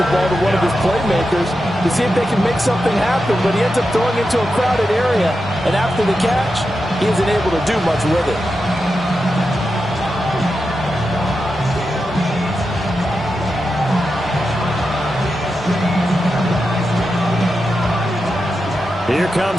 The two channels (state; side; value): normal; both; correlation 0.89